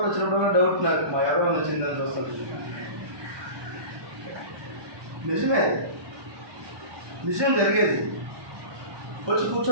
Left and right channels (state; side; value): late; left; 1.2 ms